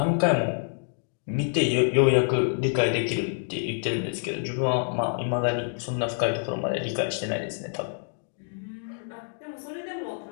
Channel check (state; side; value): silent; right; digital silence